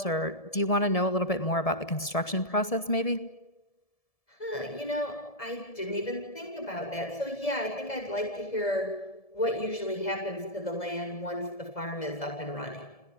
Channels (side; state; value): right; late; 1.7 ms